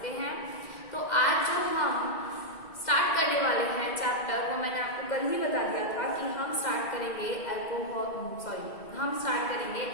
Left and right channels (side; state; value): right; late; 2.0 ms